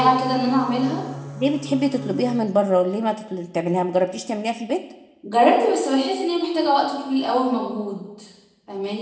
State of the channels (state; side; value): identical; both; correlation 1.00